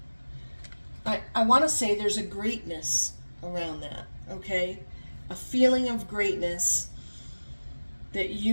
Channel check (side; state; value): both; inverted; correlation -1.00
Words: I want to say there's a greatness around that, okay? A feeling of greatness that